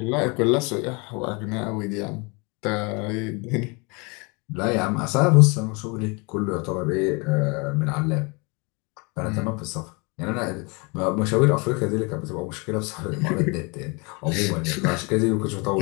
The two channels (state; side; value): quieter; right; 30.1 dB